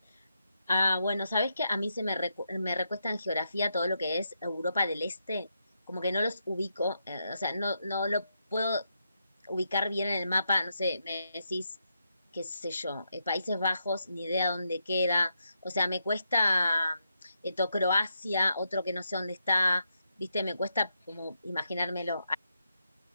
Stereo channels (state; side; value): inverted; both; correlation -0.83